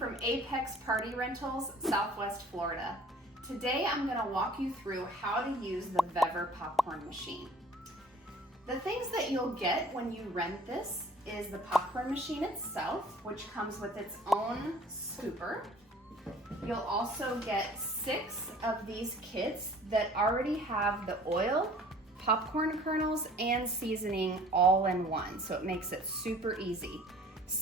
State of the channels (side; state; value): both; normal; correlation 0.51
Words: Apex Party Rentals, Southwest Florida. Today I'm going to walk you through how to use the Vevor Popcorn Machine. The things that you'll get when you rent this is the popcorn machine itself, which comes with its own scooper. You'll also get 6 of these kits that already have the oil, popcorn kernels, and seasoning all in one, so it makes it super easy.